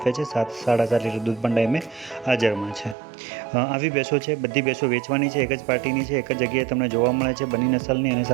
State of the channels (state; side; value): drops out; left; at 3.0 s